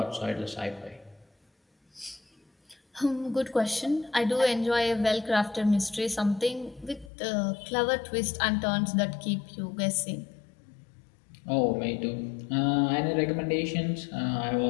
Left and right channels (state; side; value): drops out; right; at 7.1 s